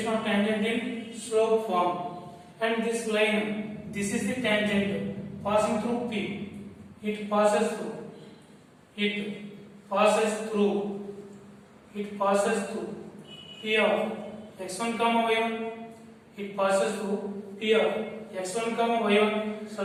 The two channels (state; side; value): identical; both; correlation 1.00